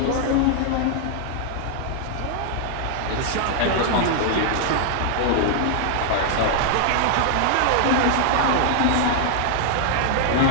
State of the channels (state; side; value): different; both; correlation 0.00